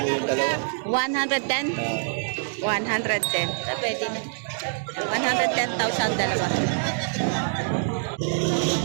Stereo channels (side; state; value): left; silent; digital silence